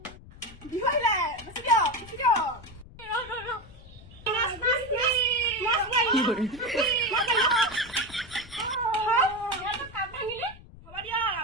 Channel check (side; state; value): left; noise; rumble, 19 dB below the sound